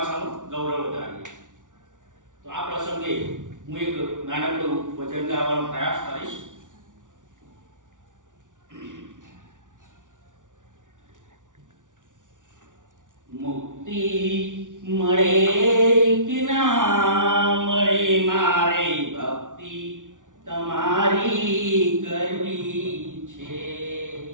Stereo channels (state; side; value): late; left; 0.87 ms